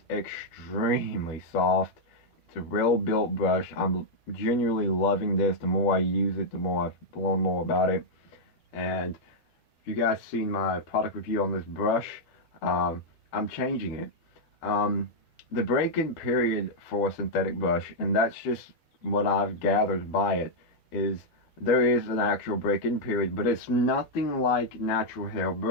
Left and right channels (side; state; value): right; late; 12 ms